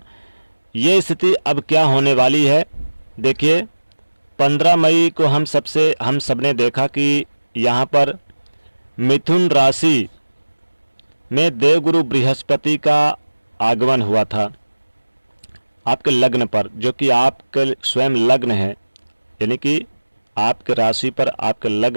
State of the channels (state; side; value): inverted; both; correlation -1.00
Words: ये स्थिति अब क्या होने वाली है। देखिए 15 मई को हम सबने देखा कि यहाँ पर मिथुन राशि में देवगुरु बृहस्पति का आगमन हुआ था आपके लग्न पर, जो कि आपके स्वयं लग्न है, यानी कि आपके राशि पर, आपके